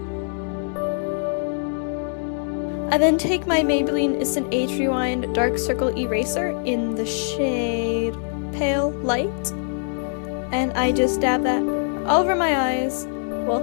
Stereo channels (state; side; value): silent; right; digital silence